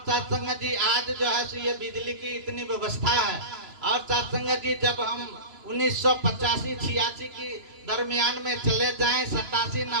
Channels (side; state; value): left; late; 2.9 ms